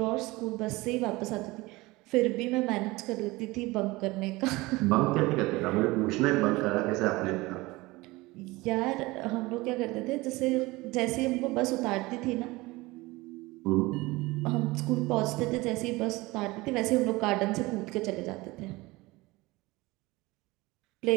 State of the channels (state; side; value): quieter; left; 21.4 dB